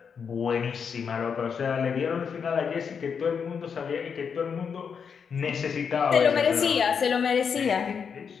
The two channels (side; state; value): right; quieter; 6.5 dB